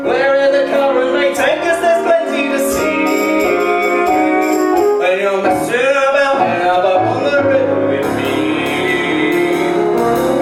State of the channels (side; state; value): both; identical; correlation 1.00